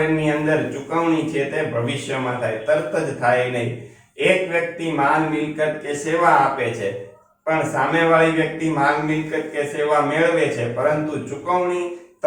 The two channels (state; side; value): identical; both; correlation 1.00